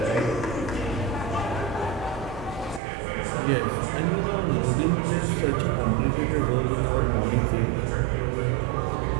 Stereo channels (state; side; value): drops out; left; at 2.8 s